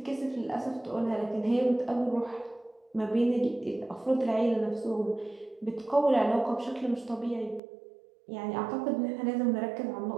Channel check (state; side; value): drops out; left; at 7.6 s